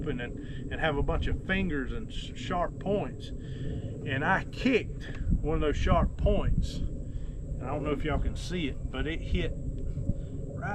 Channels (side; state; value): both; identical; correlation 1.00